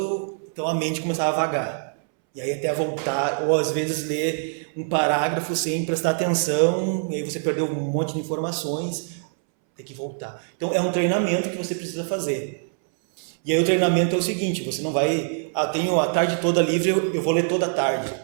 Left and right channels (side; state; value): left; silent; 63 dB below the other